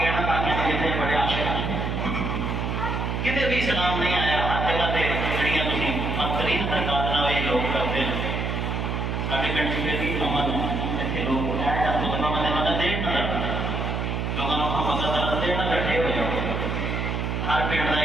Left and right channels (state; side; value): noise; right; hum, 1 dB below the sound